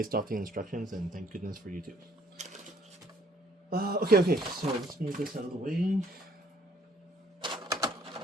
off the instructions, and thank goodness for YouTube. Okay, so let's move this out of the way.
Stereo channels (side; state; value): both; normal; correlation 0.63